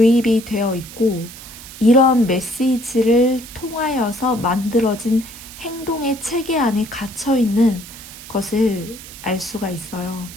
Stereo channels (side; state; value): right; noise; hiss, 15 dB below the sound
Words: 되어 있고 이런 메시지를 통하여서 만들어진 행동의 체계 안에 갇혀 있는 것을 알 수가 있어요.